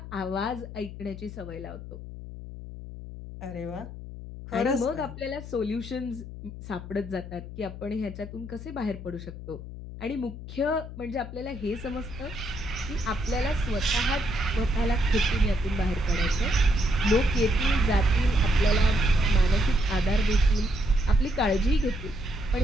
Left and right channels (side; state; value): left; noise; hum, 11 dB below the sound